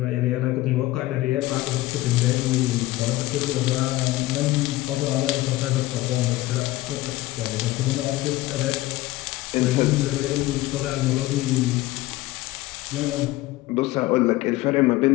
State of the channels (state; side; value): quieter; right; 17.6 dB